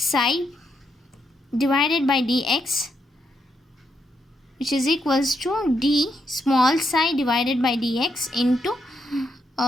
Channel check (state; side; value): normal; both; correlation 0.79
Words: divided by dx, which is equals to d small psi divided by dx into